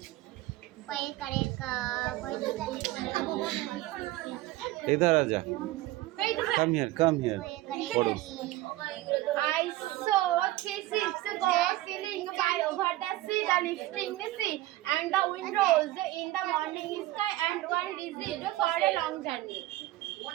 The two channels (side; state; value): left; quieter; 16.9 dB